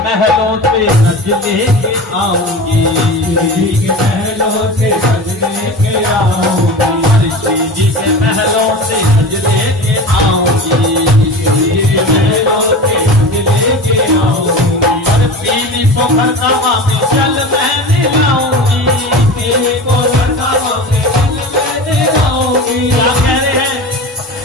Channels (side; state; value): both; normal; correlation 0.31